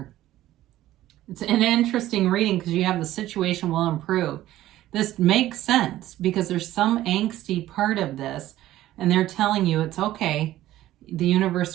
It's an interesting reading because you have the situation will improve. This makes sense because there's some angsty part of this, and they're telling you it's okay. The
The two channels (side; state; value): left; quieter; 14.5 dB